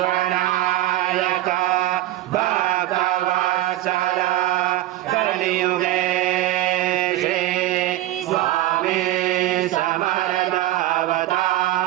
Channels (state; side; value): quieter; left; 15.5 dB